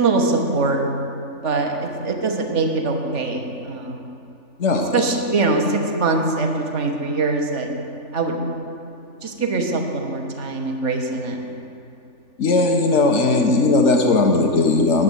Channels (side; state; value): right; late; 3.4 ms